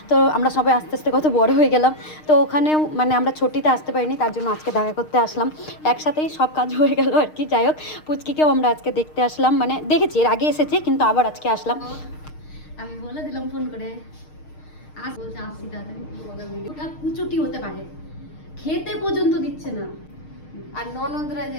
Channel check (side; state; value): right; late; 6.5 ms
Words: তো আমরা সবাই আস্তে আস্তে কত বড় হয়ে গেলাম। তো ওখানেও মানে আমরা ছুটিতে আসতে পারিনি, তার জন্য আজকে দেখা করতে আসলাম। একসাথেই সব কাজ হয়ে গেল আর কি। যাই হোক, পুচকিকেও আমরা আজকে দেখতে আসলাম, মানে দেখেছি এর আগে এসেছে কিন্তু আবার আজকে আসলাম। আমি বলে দিলাম ফোন করে বলছে আসছি তাড়াতাড়ি। ওটা কুচুটি হতে পারে, খেতে পর্যন্ত দিচ্ছে না। আর ননদরা